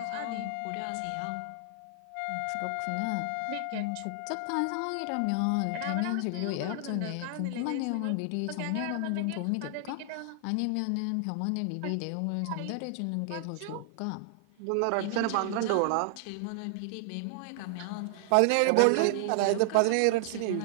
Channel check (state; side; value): different; both; correlation 0.00